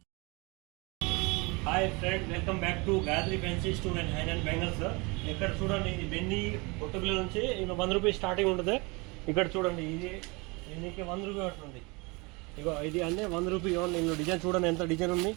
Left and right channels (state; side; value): quieter; left; 27.1 dB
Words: hi friend, welcome back to Gayatri fancy store and high and bangles. ఇక్కడ చూడండి, ఇది బెన్నీ పొట్టుపిల్ల నుంచి ఇంకా 100 రూపీస్ స్టార్టింగ్ ఉంటుంది. ఇక్కడ చూడండి, ఇది నీకు 100 రూపీ పడుతుంది. ఇగో ఇది అంటే 100 రూపీ ఓన్లీ. ఇందులో డిజైన్ చూడండి, ఎంత డిజైన్ ఉంది.